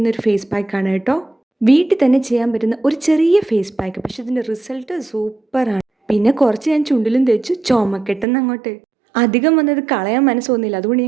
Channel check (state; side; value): drops out; left; at 8.2 s